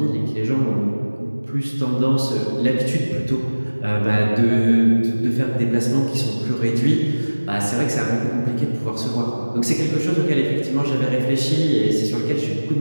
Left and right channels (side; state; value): both; inverted; correlation -1.00